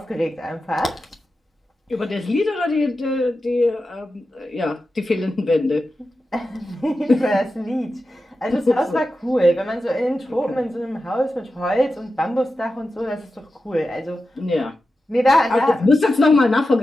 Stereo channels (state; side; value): normal; both; correlation 0.92